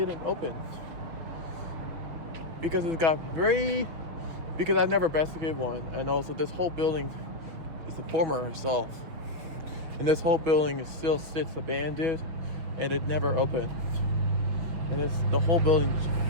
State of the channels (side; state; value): left; late; 6.6 ms